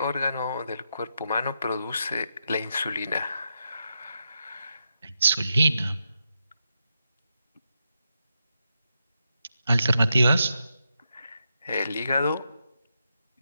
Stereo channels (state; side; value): inverted; both; correlation -0.85